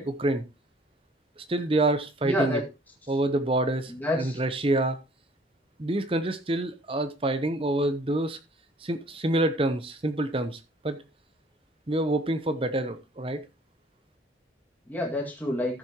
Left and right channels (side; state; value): both; normal; correlation 0.56